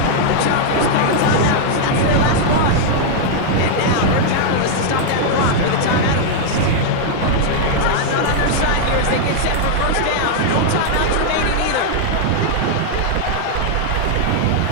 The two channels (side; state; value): both; different; correlation -0.01